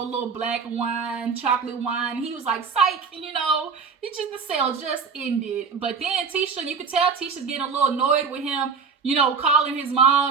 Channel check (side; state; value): left; quieter; 5.5 dB